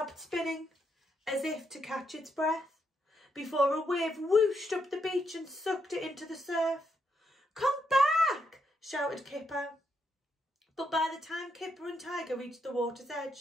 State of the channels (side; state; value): both; normal; correlation 0.79